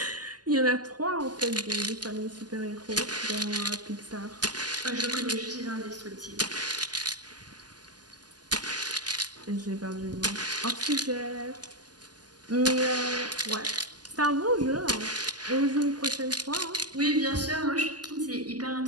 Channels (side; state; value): left; late; 0.70 ms